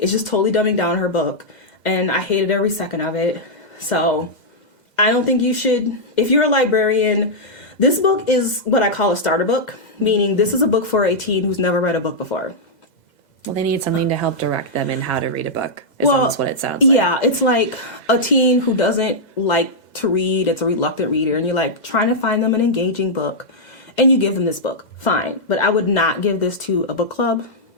just totally dumbing down her book, and I hated every second of it. So I don't think you should. If you're a librarian, this book is what I call a starter book, meaning this is a book for a teen who's never read a book before. Well, they need something to help direct them in how to read a book, is almost what it sounds like. Yeah, it's like a teen who doesn't like to read. It's a reluctant reader, and you're like trying to find them an engaging book, and you give them this book. Fine, but I would not give this to a book club,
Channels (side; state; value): right; late; 2.0 ms